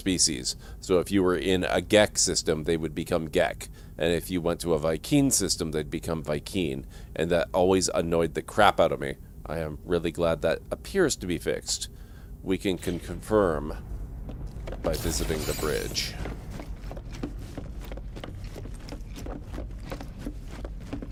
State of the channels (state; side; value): identical; both; correlation 1.00